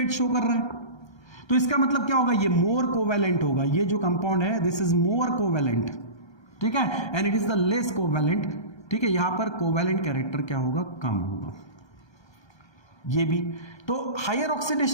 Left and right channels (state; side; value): late; right; 1.3 ms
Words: शो कर रहा है, तो इसका मतलब क्या होगा, ये मोर कोवैलेंट होगा। ये जो कंपाउंड है दिस इज मोर कोवैलेंट, ठीक है, and it is the less covalent, ठीक है। यहां पर कोवैलेंट कैरेक्टर क्या होगा, कम होगा। ये भी तो हायर